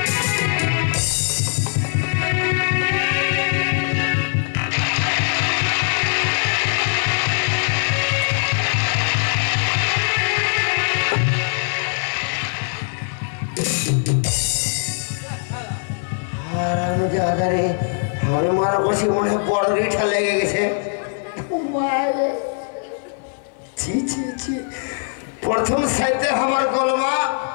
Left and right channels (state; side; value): silent; right; 58 dB below the other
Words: আমি মারা বসে মনে হয় বড় রিঠা লেগে গেছে প্রথম সাইতে আমার কলমা